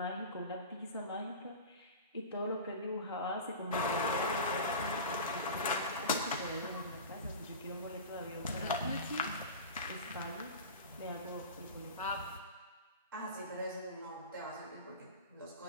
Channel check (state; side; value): inverted; both; correlation -0.32